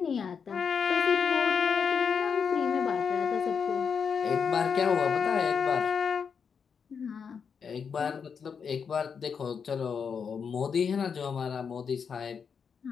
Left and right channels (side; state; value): right; quieter; 6.4 dB